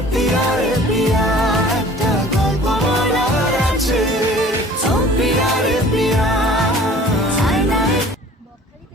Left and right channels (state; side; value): normal; both; correlation 0.48